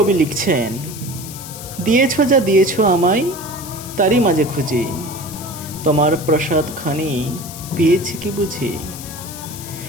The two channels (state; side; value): noise; left; hiss, 13 dB below the sound